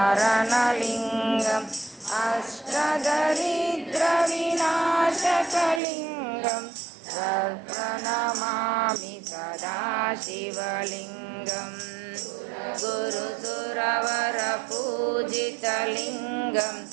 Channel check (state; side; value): drops out; left; at 5.8 s